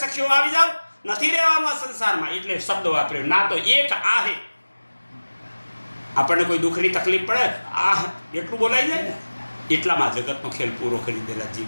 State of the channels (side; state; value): both; inverted; correlation -1.00